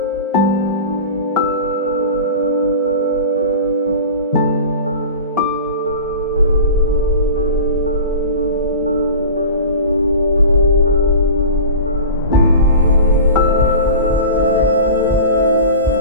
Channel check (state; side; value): inverted; both; correlation -0.35